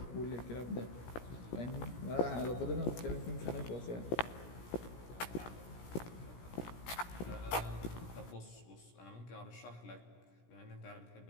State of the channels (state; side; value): late; right; 17 ms